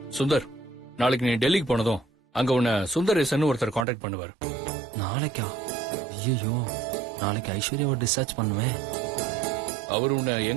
சுந்தர், நாளைக்கு நீ டெல்லிக்கு போனதும் அங்க உன்னை சுந்தரேசன் ஒருத்தர் கான்டாக்ட் பண்ணுவார். நாளைக்கா? ஐயோ, நாளைக்கு ஐஸ்வர்யாவை டிஸ்சார்ஜ் பண்ணுவேன். அவர் உன்னை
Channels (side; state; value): left; drops out; at 3.9 s